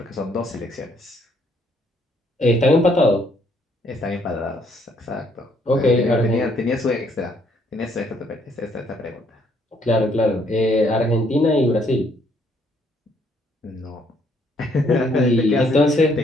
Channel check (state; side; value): normal; both; correlation 0.68